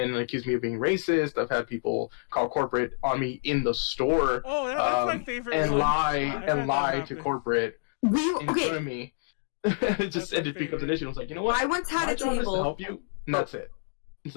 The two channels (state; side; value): silent; right; digital silence